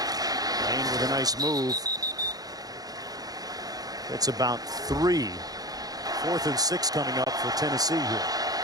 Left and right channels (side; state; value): left; late; 0.18 ms